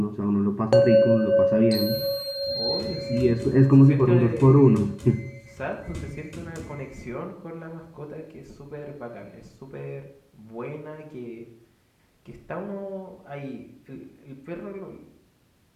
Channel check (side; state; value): both; identical; correlation 1.00